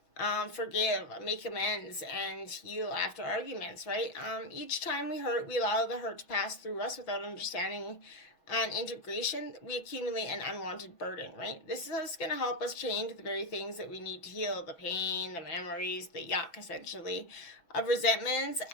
forgive, make amends, and heal after arguments, right? Each time we hurt, we allow the hurt to pass through us without understanding and integration. We accumulate an unwanted burden, right? This is going to help us change the very things that we need to heal, the pain, the memories, the yuck, essentially, of resentments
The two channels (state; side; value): late; right; 6.2 ms